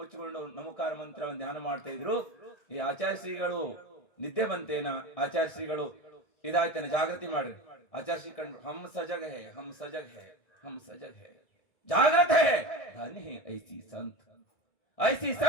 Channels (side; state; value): right; late; 1.6 ms